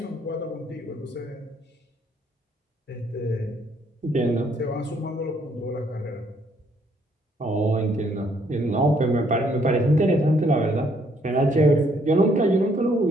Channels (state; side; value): normal; both; correlation 0.68